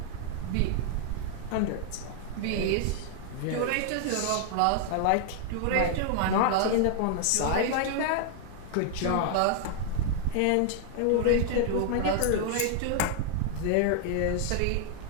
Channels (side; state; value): both; different; correlation 0.00